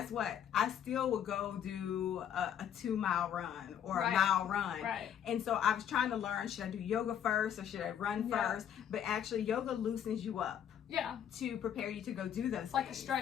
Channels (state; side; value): quieter; right; 9.4 dB